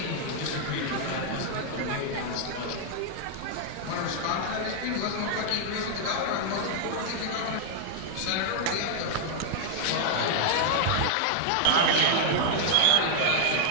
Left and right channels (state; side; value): different; both; correlation -0.01